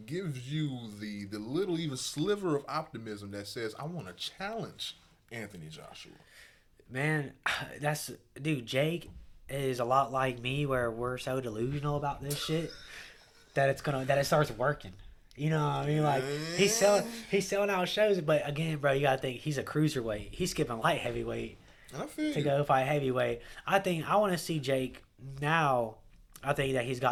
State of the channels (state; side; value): identical; both; correlation 1.00